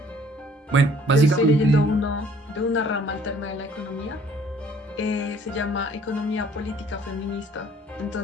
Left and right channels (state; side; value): normal; both; correlation 0.57